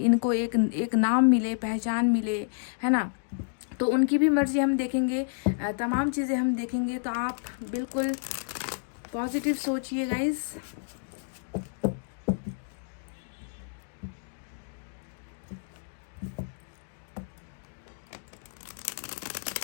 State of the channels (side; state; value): right; silent; digital silence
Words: एक नाम मिले, पहचान मिले, है ना। तो उनकी भी मर्जी हम देखेंगे, तमाम चीज़ें हम देखेंगे। तो आप बिल्कुल पॉजिटिव सोचिए गाइस।